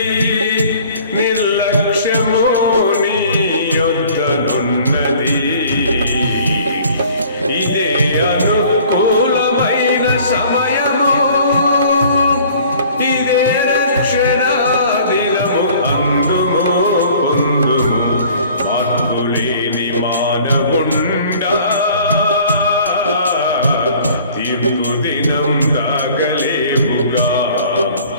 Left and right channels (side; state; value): both; inverted; correlation -0.51